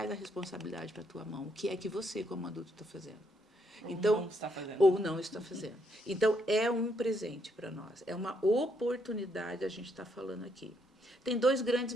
a responsabilidade para a tua mão. O que é que você, como adulto, está fazendo? Então, não está fazendo. Ou não está fazendo. Então, é um presente para nós. É uma oportunidade a gente está falando aqui. Tem 2 grandes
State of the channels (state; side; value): normal; both; correlation 0.74